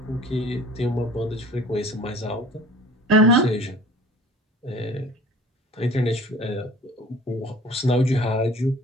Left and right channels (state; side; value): normal; both; correlation 0.46